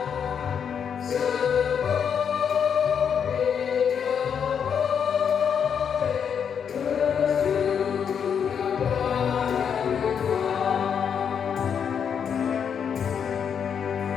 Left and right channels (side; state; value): right; quieter; 7.5 dB